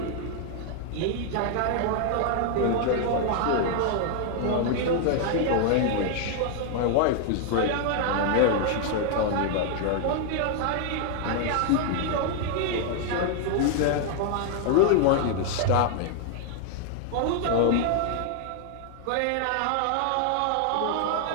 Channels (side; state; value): both; different; correlation 0.00